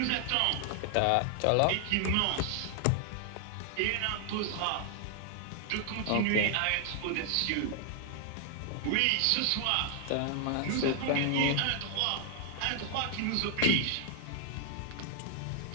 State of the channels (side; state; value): both; different; correlation 0.00